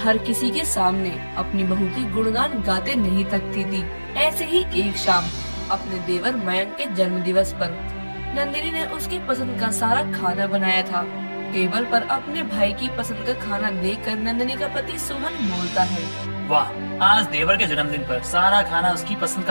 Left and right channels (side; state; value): both; inverted; correlation -1.00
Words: किसी के सामने अपनी बहू की गुणगान गाते नहीं थकती थी। ऐसे ही एक शाम अपने देवर मयंक के जन्मदिवस पर नंदिनी ने उसकी पसंद का सारा खाना बनाया था। टेबल पर अपने भाई की पसंद का खाना देखकर नंदिनी का पति सोहन बोलता है, वाह, आज देवर के जन्मदिन पर सारा खाना उसकी पसंद